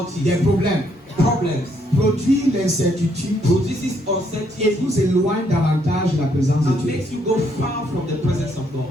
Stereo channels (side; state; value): both; normal; correlation 0.71